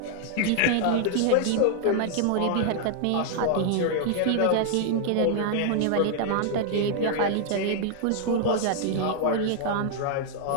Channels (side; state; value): both; different; correlation -0.01